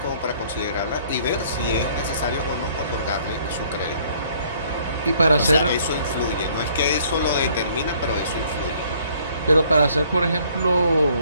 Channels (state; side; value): inverted; both; correlation -0.61